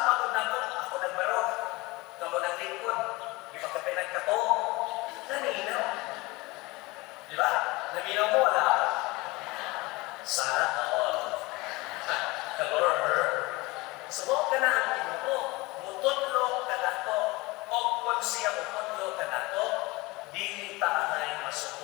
ko na ako nagbaro, kamo ng lingkod, ipagkapinag ka to, naminaw. Di ba? Naminaw mo, wala. Sana all. Sumo ka na ang Ginoo, mutudlo ka na to, o kung siya mutudlo ka na to, dili ta angay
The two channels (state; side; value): quieter; right; 22.5 dB